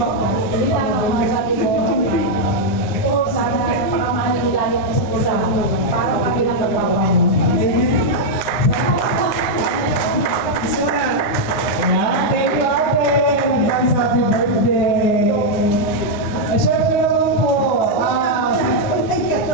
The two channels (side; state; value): right; late; 9.8 ms